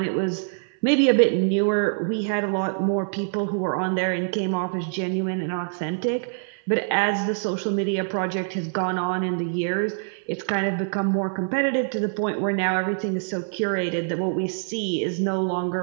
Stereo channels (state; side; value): silent; left; 61 dB below the other